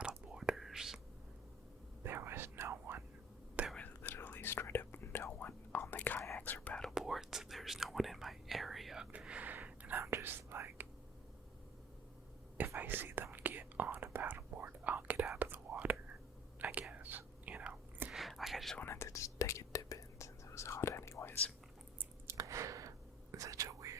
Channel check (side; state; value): both; normal; correlation 0.50